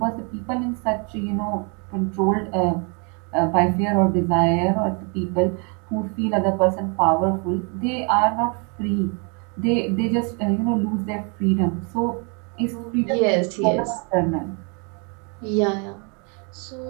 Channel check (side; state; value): left; quieter; 35.0 dB